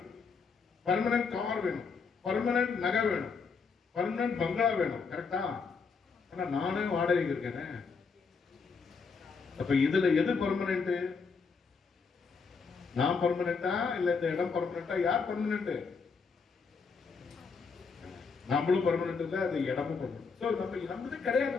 பர்மனன்ட் கார் வேணும், பர்மனன்ட் நகை வேணும், பர்மனன்ட் பங்களா வேணும். கரெக்டா? ஆனா நானே வாடகைக்கு இருக்கேன். அப்ப இதுல எது பர்மனன்ட்? நான் பர்மனண்டா இல்ல இந்த இடம் பர்மனண்டா? யார் பர்மனன்ட்? நம்மளும் பர்மனன்ட் இல்ல, அது இடமும் பர்மனன்ட். நம்மது கிடையாது.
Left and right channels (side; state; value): right; quieter; 5.1 dB